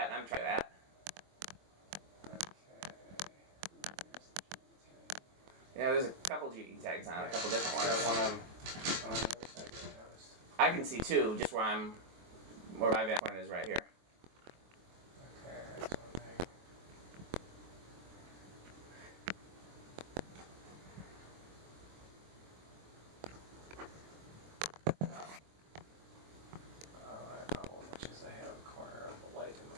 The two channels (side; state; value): left; late; 24 ms